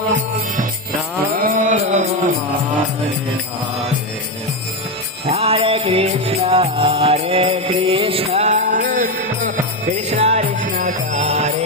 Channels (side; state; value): both; normal; correlation 0.10